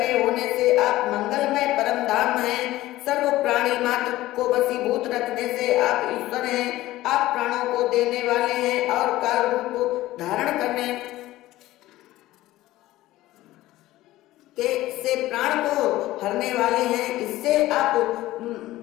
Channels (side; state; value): right; quieter; 16.3 dB